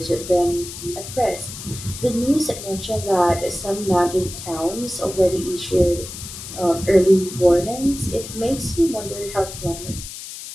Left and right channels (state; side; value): noise; left; hiss, 11 dB below the sound